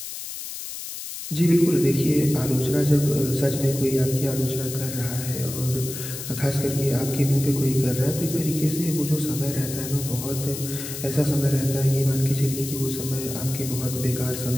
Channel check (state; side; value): noise; left; hiss, 8 dB below the sound